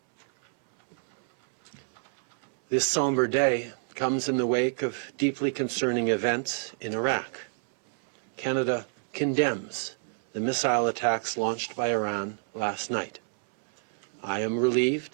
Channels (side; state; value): left; silent; 59 dB below the other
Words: This somber day comes in the wake of deeply concerning events in Iraq. Canada condemns the missile attacks launched by Iran last night. I am